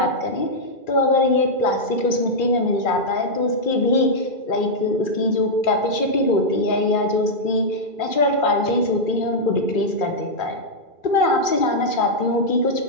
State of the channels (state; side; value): late; right; 2.4 ms